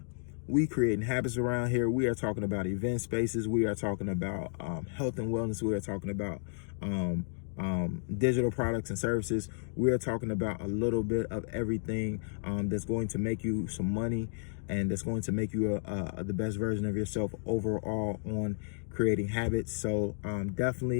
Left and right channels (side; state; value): right; silent; digital silence